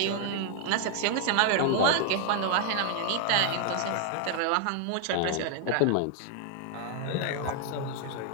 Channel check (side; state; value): both; different; correlation 0.00